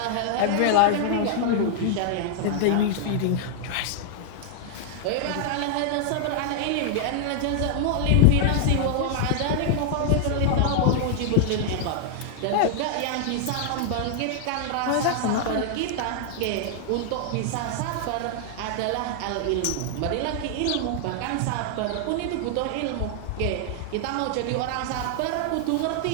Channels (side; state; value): both; different; correlation -0.01